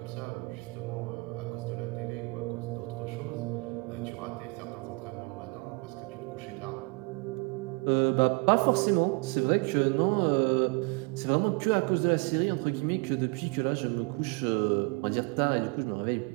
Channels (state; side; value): quieter; left; 30.0 dB